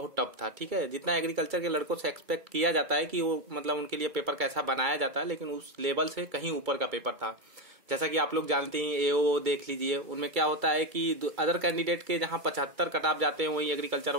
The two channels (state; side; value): late; left; 2.3 ms